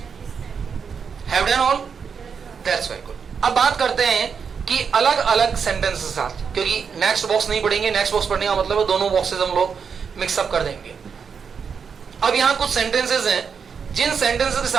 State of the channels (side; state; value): left; quieter; 6.3 dB